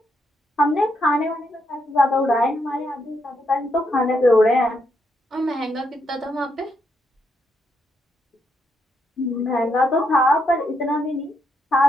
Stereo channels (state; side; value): normal; both; correlation 0.78